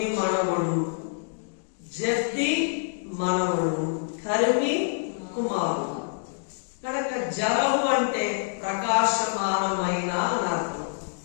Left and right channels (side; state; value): right; silent; digital silence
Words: మనవడు, జెఫ్తి మనవడు, కర్మి కుమారుడు. కనుక జరహు అంటే ప్రకాశమానమైన అని అర్థం.